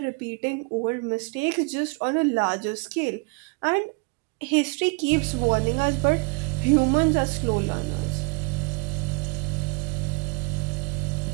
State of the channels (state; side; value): quieter; left; 31.7 dB